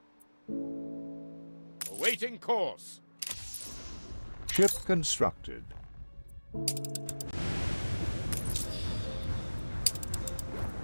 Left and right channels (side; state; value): both; inverted; correlation -1.00